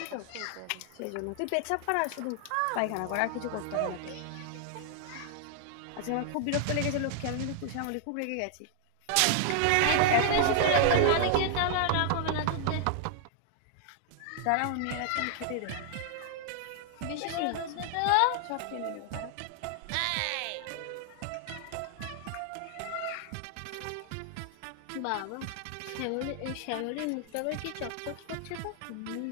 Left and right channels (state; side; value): different; both; correlation -0.01